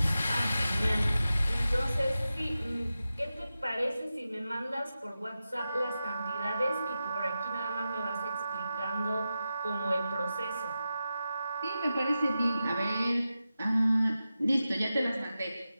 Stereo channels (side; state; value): both; inverted; correlation -0.92